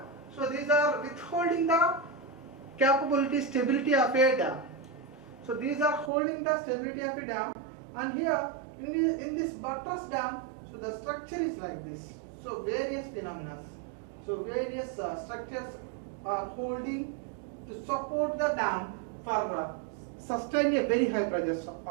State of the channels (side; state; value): left; drops out; at 6.1 s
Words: So these are withholding the stability of a dam. So these are holding the stability of a dam. And here in this buttress dam, so the structure is like this. So various phenomena. So various structures are holding to support the dam for sustain a very high pressure